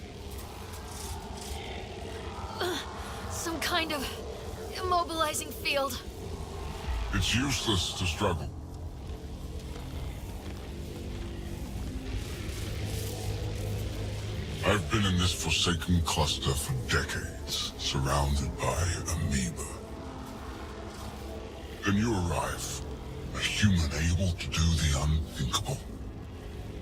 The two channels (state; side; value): identical; both; correlation 1.00